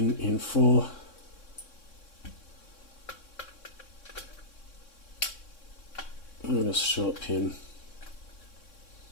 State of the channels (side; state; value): right; late; 3.6 ms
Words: in 4. And a short pin